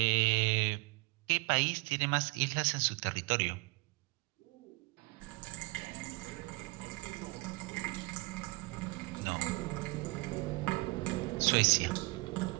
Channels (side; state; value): left; quieter; 25.9 dB